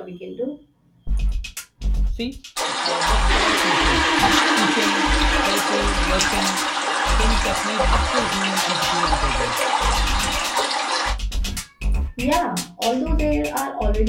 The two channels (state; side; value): identical; both; correlation 1.00